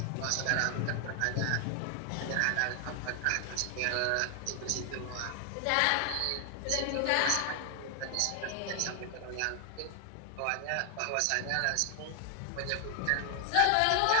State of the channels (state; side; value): different; both; correlation 0.00